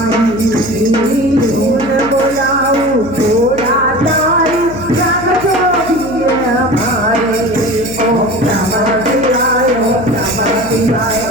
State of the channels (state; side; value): noise; left; hum, 13 dB below the sound